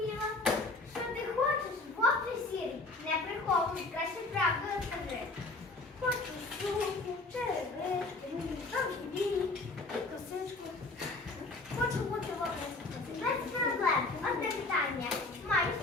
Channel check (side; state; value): right; quieter; 3.3 dB